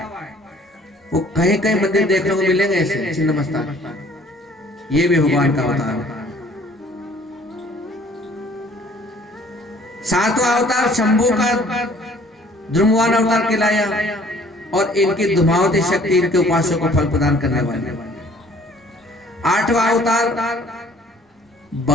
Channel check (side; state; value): both; normal; correlation 0.56